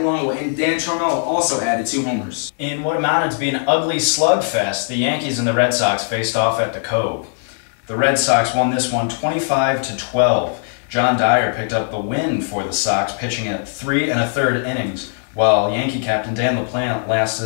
and Dan Charmello also added 2 homers. In what amounted to be an ugly slugfest, the Yankees and the Red Sox faced off at the Cove. The Red Sox won this one 25-12. John Dyer picked up the win for the Sox, pitching at 3 1/3 innings, while Yankee captain Dan LaPlante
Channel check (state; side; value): silent; right; digital silence